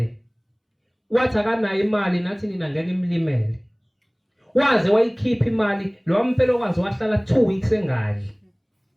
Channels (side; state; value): both; identical; correlation 1.00